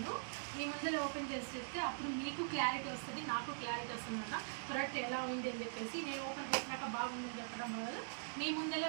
మీ ముందరే ఓపెన్ చేసి చెప్తే అప్పుడు మీకు క్లారిటీ వస్తుంది, నాకు క్లారిటీ వస్తుంది అన్న ప్రోడక్ట్ ఎలా ఉంది అని చెప్పేసి. నేను ఓపెన్ చేసినాక బాగుందని చెప్పడం బదులు మీ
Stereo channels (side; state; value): left; silent; digital silence